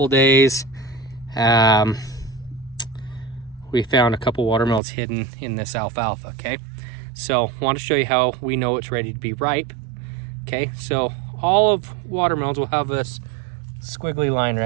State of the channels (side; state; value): left; drops out; at 4.8 s